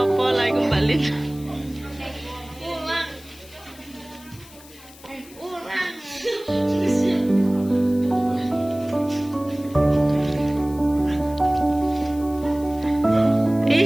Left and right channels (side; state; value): left; noise; hiss, 22 dB below the sound